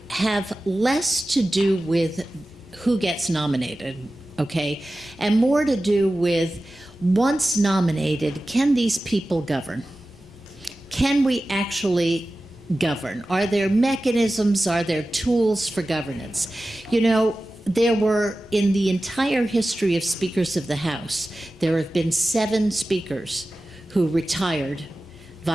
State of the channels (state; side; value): normal; both; correlation 0.95